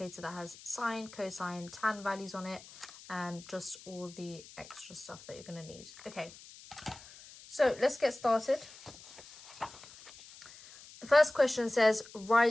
that has sine, cosine, tan values on it and just all the extra stuff that you're going to need. Okay, so let's get started. The first question says,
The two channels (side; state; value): left; noise; hiss, 19 dB below the sound